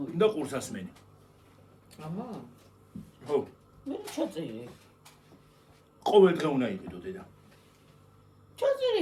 და ყურსასმენი. ამა? ხო, მე ჩაწერე. ყოველ დღე უნდა იყიდო დედა. ჩაწერე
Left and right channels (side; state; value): both; identical; correlation 1.00